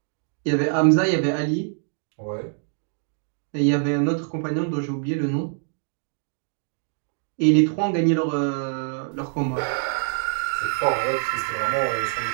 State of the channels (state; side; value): silent; left; 62 dB below the other